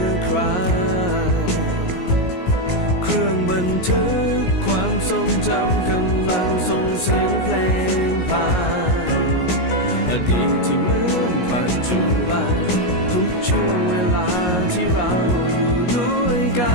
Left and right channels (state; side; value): late; right; 17 ms